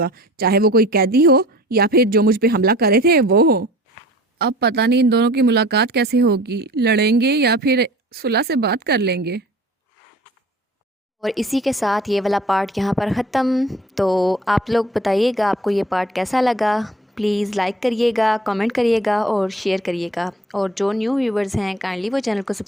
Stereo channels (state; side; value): normal; both; correlation 0.45